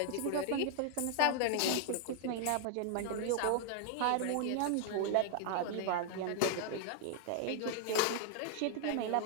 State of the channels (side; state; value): both; different; correlation 0.00